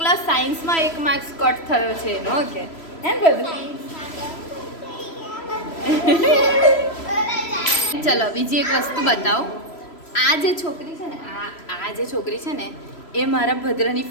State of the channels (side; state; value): right; late; 3.0 ms